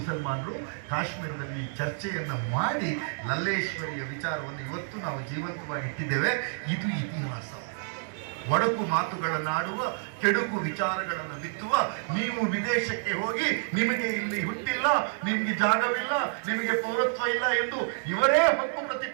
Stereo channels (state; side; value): silent; left; digital silence